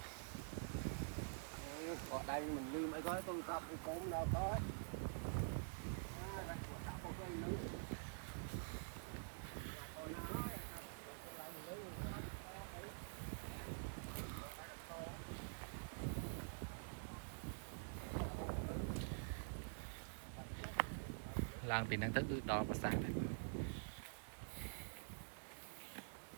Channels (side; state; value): left; silent; digital silence